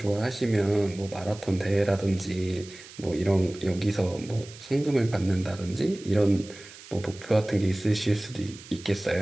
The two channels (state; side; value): noise; right; hiss, 18 dB below the sound